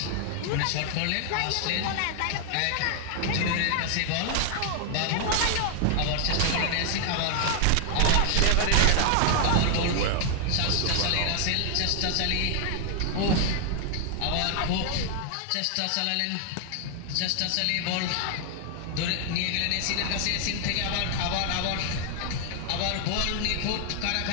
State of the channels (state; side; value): different; both; correlation 0.00